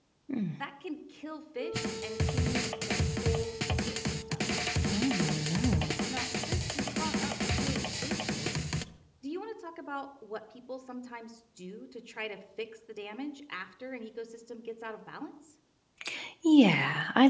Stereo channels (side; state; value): both; identical; correlation 1.00